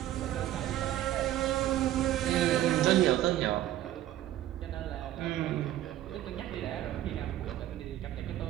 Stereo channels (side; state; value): left; quieter; 13.2 dB